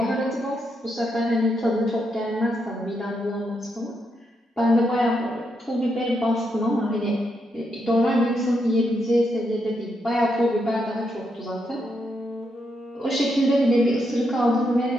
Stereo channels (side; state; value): both; normal; correlation 0.81